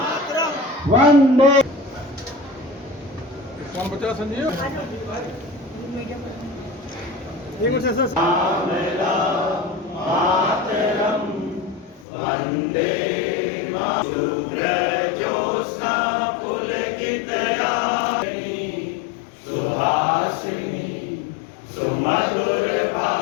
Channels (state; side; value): drops out; right; at 12.1 s